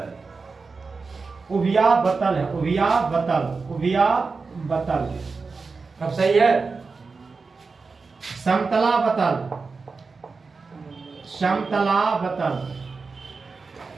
उभयावतल है। उभयावतल अब सही है। समतलावतल।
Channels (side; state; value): left; quieter; 4.4 dB